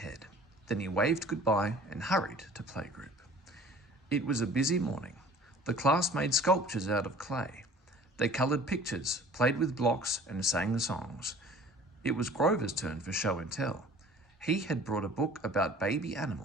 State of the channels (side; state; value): both; normal; correlation 0.48